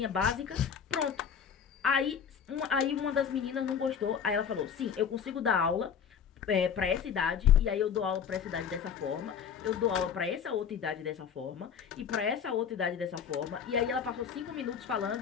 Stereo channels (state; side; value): quieter; right; 7.5 dB